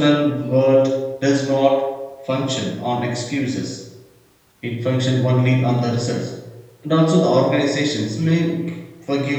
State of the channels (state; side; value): identical; both; correlation 1.00